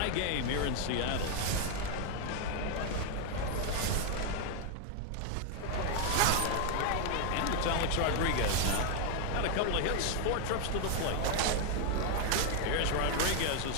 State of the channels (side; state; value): both; different; correlation 0.01